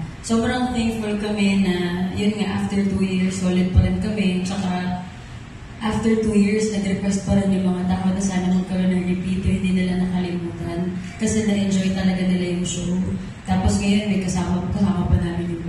Sobrang thankful kami na, yun nga, after 2 years, solid pa rin kami. Tsaka, after 2 years, nag-request pa rin yung mga tao na sana magkaroon ng repeater, hindi nila nakalimutan. kasi na-enjoy talaga nila yung show. Tapos ngayon may kasama pa namin yung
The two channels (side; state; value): both; identical; correlation 1.00